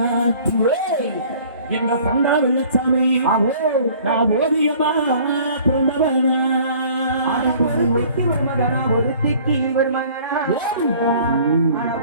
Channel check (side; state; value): both; inverted; correlation -0.52